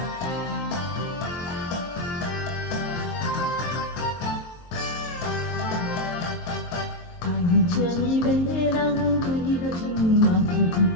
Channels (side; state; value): right; late; 23 ms